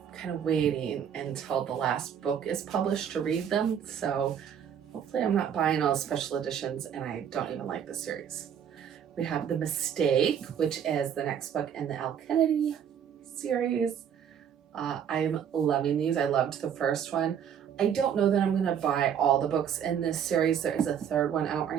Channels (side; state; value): left; quieter; 8.6 dB